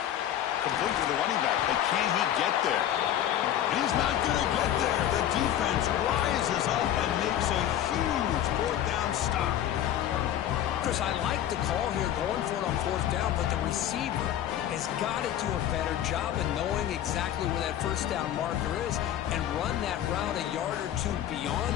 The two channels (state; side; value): quieter; right; 11.3 dB